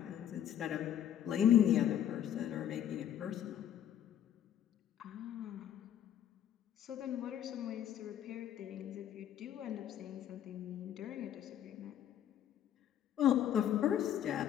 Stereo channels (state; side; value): quieter; right; 10.4 dB